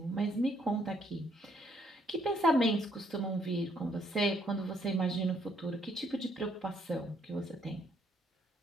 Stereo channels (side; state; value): both; normal; correlation 0.69